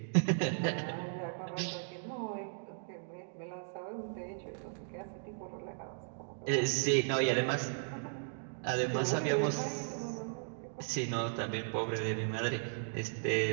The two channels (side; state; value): left; silent; digital silence